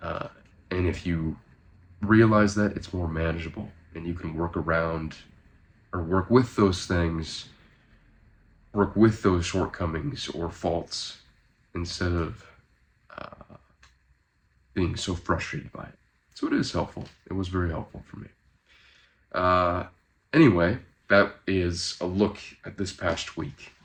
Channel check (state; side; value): identical; both; correlation 1.00